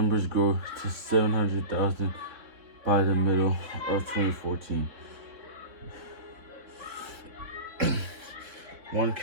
grow to 700,000 by the middle of 2014. one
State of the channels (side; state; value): left; late; 4.1 ms